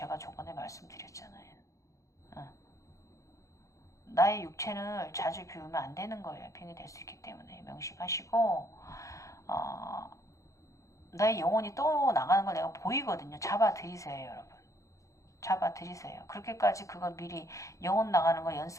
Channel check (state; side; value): late; right; 0.15 ms